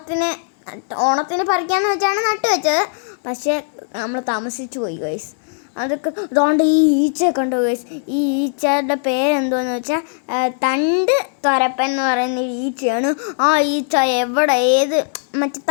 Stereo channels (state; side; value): silent; right; digital silence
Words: ഓണത്തിന് പറിക്കാമെന്ന് വെച്ചാണ് നട്ടു വെച്ചത്. പക്ഷേ നമ്മൾ താമസിച്ചു പോയി ഗൈസ്. അതൊക്കെ അതുകൊണ്ട് ഈ ഈച്ചയെ കണ്ടു ഗൈസ്. ഈ ഈച്ചയുടെ പേരെന്തോന്ന് വെച്ചാൽ തണ്ട് തുരപ്പൻ എന്ന് പറയുന്ന ഈച്ചയാണ്. ആ ഈച്ച ഏത് മറ്റേ